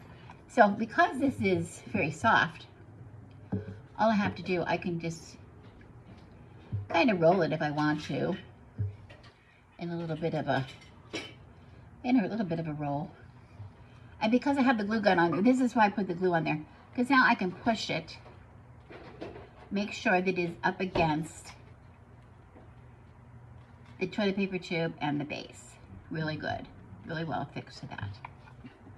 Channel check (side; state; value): both; identical; correlation 1.00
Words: So because this is very soft, all I have to do, I can just kind of roll it if I want to in a little bit of a roll. And because I have the glue gun on there, this is why I put the glue on there, because now I can push it, make sure that it is up against the toilet paper tube and the base. Really good, really well fixed to that.